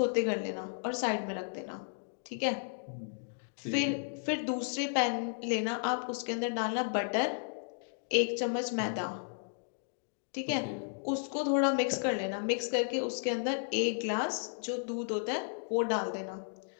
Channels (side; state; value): right; silent; digital silence